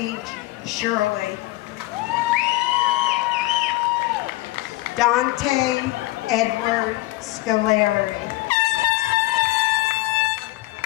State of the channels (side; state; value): right; quieter; 19.1 dB